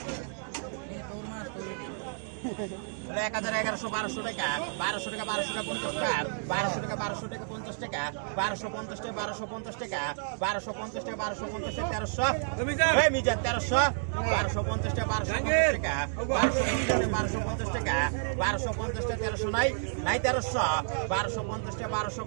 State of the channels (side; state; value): left; silent; digital silence